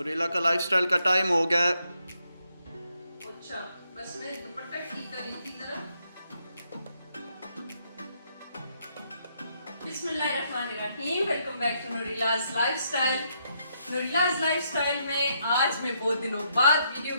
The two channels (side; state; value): both; inverted; correlation -0.76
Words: का लाइफस्टाइल का टाइम हो गया है। अच्छा, बस मैं दुपट्टा ठीक कर रही थी जरा। बिस्मिल्लाहिर्रहमानिर्रहीम। Welcome back to Noorilaj lifestyle. Noorilaj lifestyle में आज मैं बहुत दिनों बाद वीडियो